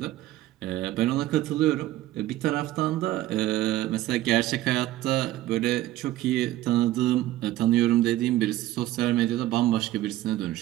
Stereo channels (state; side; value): quieter; left; 15.3 dB